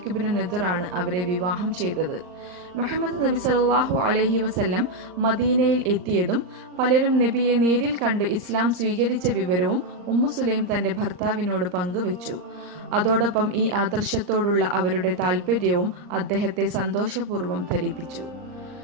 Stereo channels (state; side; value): late; left; 39 ms